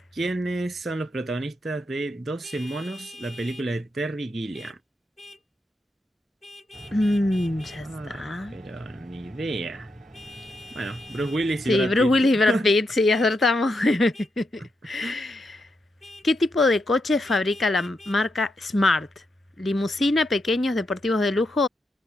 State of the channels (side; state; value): both; normal; correlation 0.83